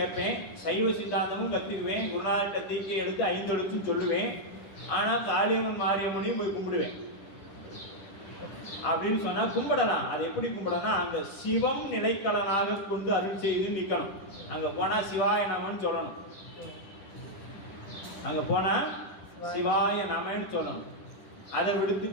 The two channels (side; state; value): right; late; 10 ms